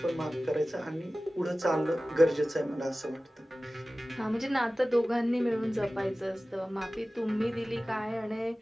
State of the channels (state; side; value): normal; both; correlation 0.96